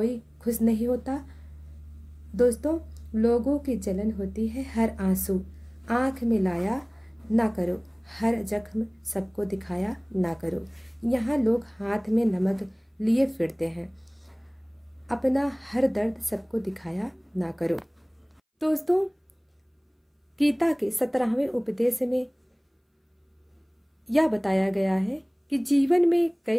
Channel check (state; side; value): identical; both; correlation 1.00